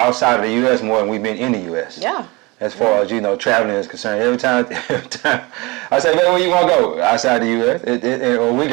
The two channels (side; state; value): left; quieter; 24.8 dB